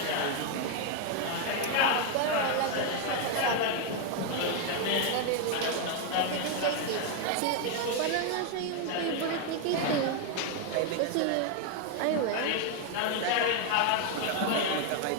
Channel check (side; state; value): both; different; correlation 0.01